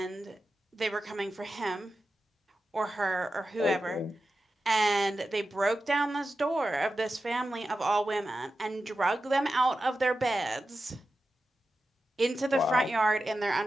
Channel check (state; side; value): normal; both; correlation 0.92